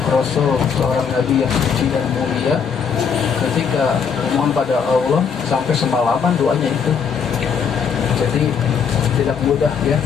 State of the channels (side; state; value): right; quieter; 6.6 dB